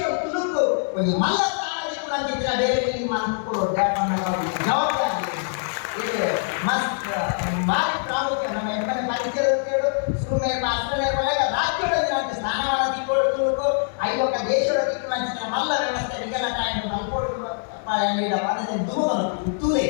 ತುಳುಕು ಒಂದು ಮಲ್ಲ ಸಾಮಾಜಿಕ ನಂಬಿಕೆ ಬೇರೆ ಇಲ್ಲಿ ಮಾಡ್ಕೊಳ್ಳೋದು ಜವಾಬ್ದಾರಿ ಇದು ಮಸ್ತ್ ಭಾರಿ ಪ್ರಾಮುಖ್ಯ. ನಮ್ಮ ಎಮ್ಮನೆ ಪರಿಚಯಗಳು ಸುಮ್ಮನೆ ಅಸ್ಟ್ರೇಲಿಯಾ ಪಾಲಕ ರಾಜ್ಯಗಳಲ್ಲಿ ನಮಗೆ ಸ್ಥಾನಮಾನ ತಿಳ್ಕೊಳ್ಳೋ ತುಳುಕು ಐವತ್ತ ದೇಶಗಳ ತಿಳ್ಕೊಳ್ಳೋ ಮಲ್ಲ ವ್ಯವಸ್ಥೆ ನಿಗಲಟ ಎಂದು ಮಲ್ಕೊಡುವ ತೂಲೆ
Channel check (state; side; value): silent; right; digital silence